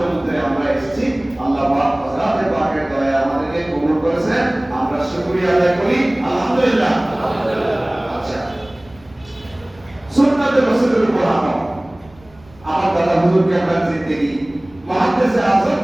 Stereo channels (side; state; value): right; noise; rumble, 26 dB below the sound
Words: আমরা এসেছি, আল্লাহ পাক হযরতে পাকের দয়া আমাদেরকে কবুল করেছেন, আমরা শুকরিয়া আদায় করি আলহামদুলিল্লাহ। আচ্ছা, সুন্নাতে রাসূলের উপর আমল। আমার দাদা হুজুর কেবলার জিন্দেগি, মুহাদ্দিসে আযম